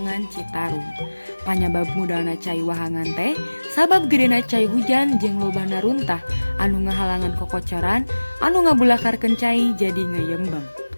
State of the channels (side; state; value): both; inverted; correlation -1.00